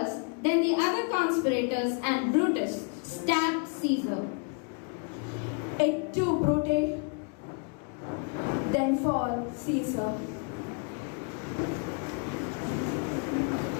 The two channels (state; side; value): quieter; right; 38.2 dB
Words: then the other conspirators and Brutus stabbed Caesar. Et tu, Brute, then fall Caesar.